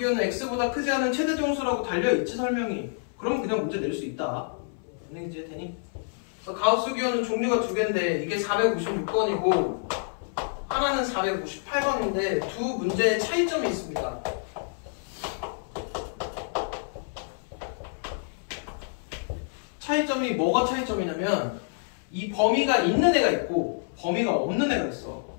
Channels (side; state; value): right; silent; 60 dB below the other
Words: x보다 크지 않은 최대 정수라고 달려있지 설명이. 그럼 그냥 문제 낼 수 있다. 이해가 되니? 그래서 가우스 기호는 종류가 2개인데 이게 456번이고 하나는 458번인데 두 문제의 차이점이 있습니다. 차이점이 뭐가 차이점이냐면 이 범위가 있는 애가 있고 범위가 없는 애가 있어.